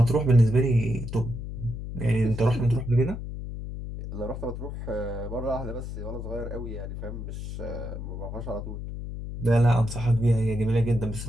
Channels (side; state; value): left; noise; hum, 7 dB below the sound